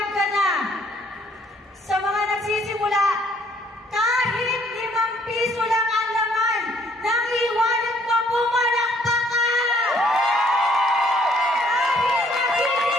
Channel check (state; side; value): normal; both; correlation 0.63